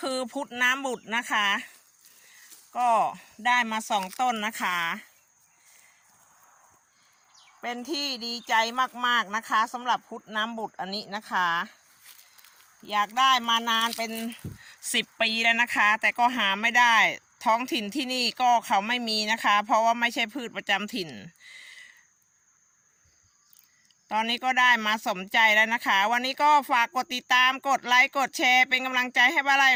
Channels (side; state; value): both; identical; correlation 1.00